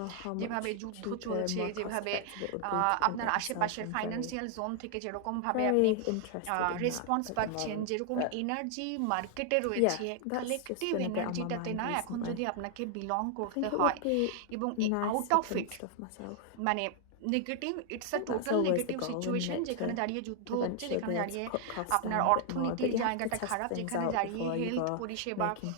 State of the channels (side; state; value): both; different; correlation 0.00